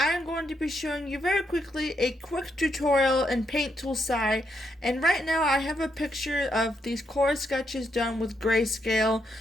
going to be showing you very quickly a quick tutorial in Paint Tool SAI, and right now I have a picture of these Korra sketches done with grayscale,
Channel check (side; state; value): both; normal; correlation 0.79